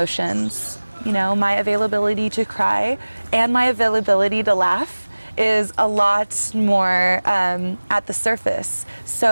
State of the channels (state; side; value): inverted; both; correlation -1.00